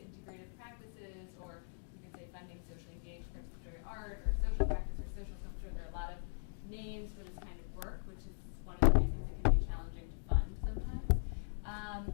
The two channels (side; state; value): right; silent; digital silence